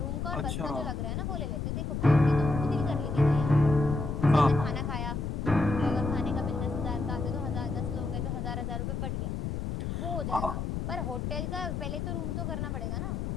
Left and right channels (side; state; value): left; noise; rumble, 3 dB below the sound